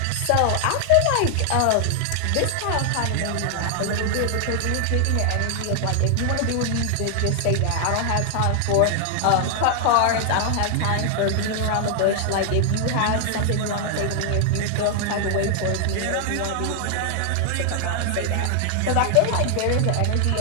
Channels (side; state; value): both; different; correlation 0.00